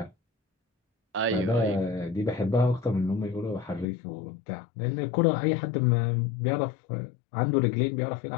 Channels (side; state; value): right; drops out; at 3.9 s